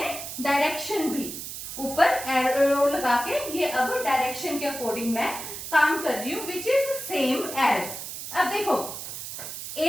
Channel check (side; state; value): right; noise; hiss, 8 dB below the sound